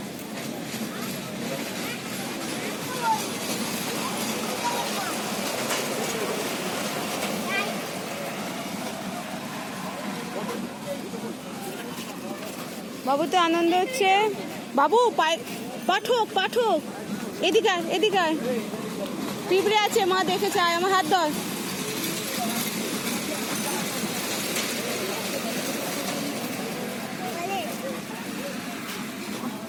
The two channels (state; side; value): identical; both; correlation 1.00